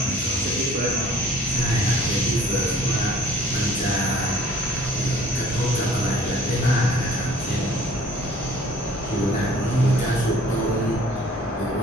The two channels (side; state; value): both; normal; correlation 0.53